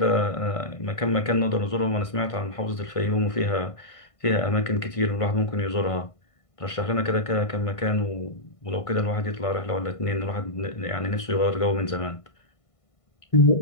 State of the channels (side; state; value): right; late; 1.5 ms